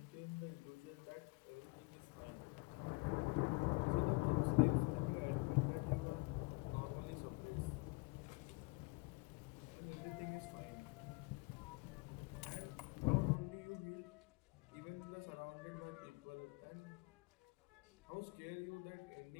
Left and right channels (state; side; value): quieter; right; 27.5 dB